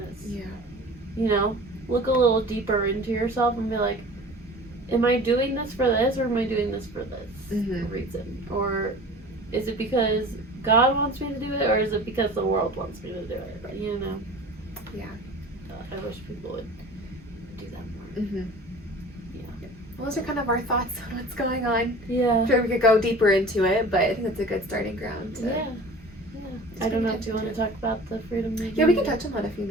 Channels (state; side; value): normal; both; correlation 0.41